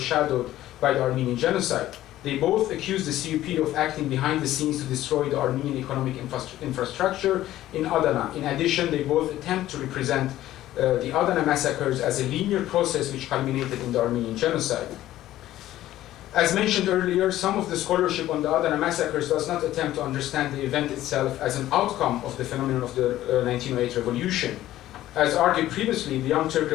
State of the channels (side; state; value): right; quieter; 14.2 dB